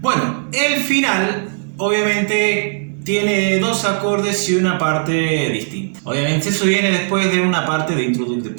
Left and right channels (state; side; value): silent; left; digital silence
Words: el final obviamente tiene dos acordes y una parte distinta. Obviamente eso viene después de una parte de